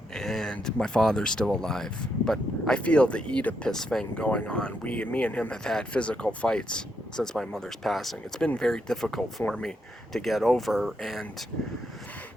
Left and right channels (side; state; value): both; normal; correlation 0.79